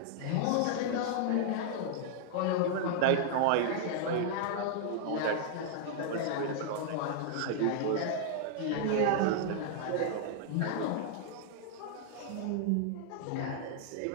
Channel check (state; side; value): different; both; correlation -0.01